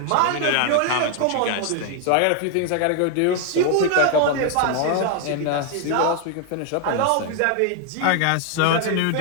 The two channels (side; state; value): both; different; correlation 0.00